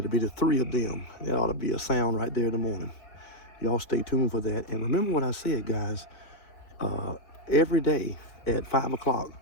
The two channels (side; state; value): right; late; 4.8 ms